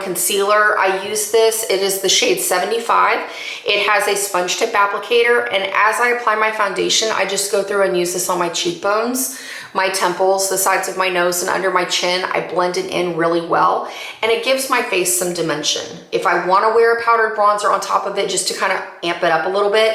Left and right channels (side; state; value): both; identical; correlation 1.00